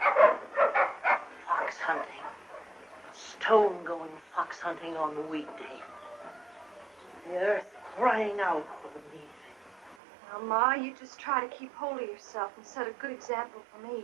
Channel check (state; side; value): drops out; left; at 10.0 s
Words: Fox hunting. Stone-going fox hunting on the weekday. The earth crying out for the meat. Now, Ma, you just try to keep hold of yourself and set a good example for me.